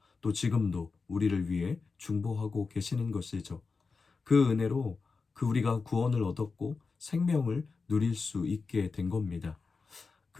또 지금도 우리를 위해 중보하고 계시는 것이죠. 그 은혜로 우리가 구원을 얻었고 생명을 누릴 수 있게 된 겁니다.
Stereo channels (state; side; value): quieter; right; 4.5 dB